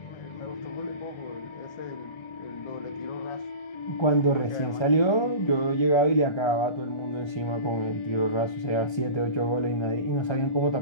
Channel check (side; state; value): right; late; 1.3 ms